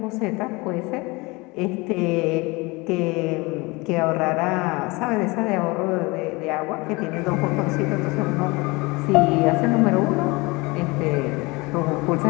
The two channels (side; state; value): right; quieter; 24.9 dB